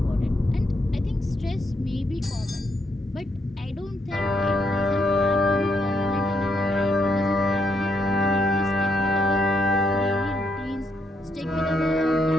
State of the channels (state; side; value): normal; both; correlation 0.77